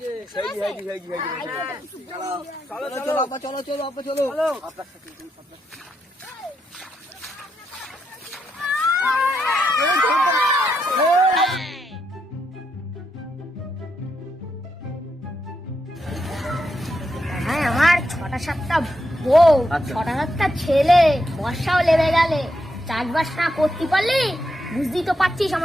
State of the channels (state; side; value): normal; both; correlation 0.82